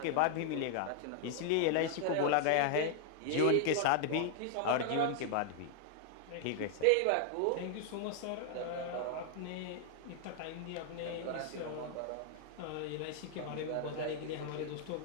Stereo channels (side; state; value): both; different; correlation 0.00